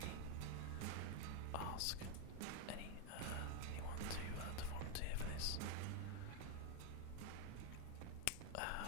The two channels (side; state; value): both; different; correlation 0.01